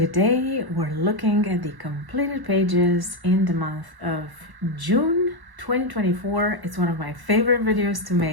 we're looking at the completed pages in the month of June 2024. It's one of my favorite videos to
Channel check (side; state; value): left; late; 1.1 ms